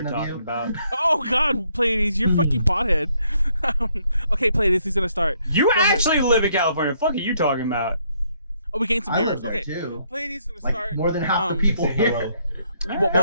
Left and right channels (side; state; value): both; inverted; correlation -0.70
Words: impersonation of talking you. about. Oh God, Pleiades, you're fucking pothead. Okay, Pleiades, he's gonna start. You Go ahead. actually live in California. What the fuck are you talking about? Oh, we gained some I viewers. live there Okay, too. Pleiades is gonna Like start. more than half the people Say here. hello. While